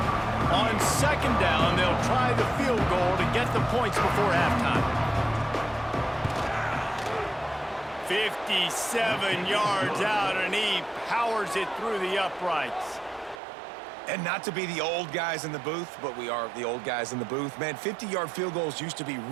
On 2nd down, they'll try the field goal to get the points before halftime. 57 yards out, and he powers it through the uprights. And not to be the old guys in the booth, but we are the old guys in the booth. Man, 50-yard field goals used to be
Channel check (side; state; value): left; drops out; at 13.4 s